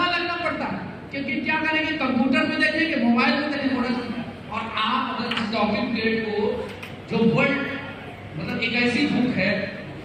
लगना पड़ता है, क्योंकि क्या करेंगे, कंप्यूटर में देखेंगे, मोबाइल में देखेंगे, मोटा चश्मा। और आप अगर इस टॉकिंग ट्रेड को, जो वर्ल्ड मतलब एक ऐसी बुक है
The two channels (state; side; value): identical; both; correlation 1.00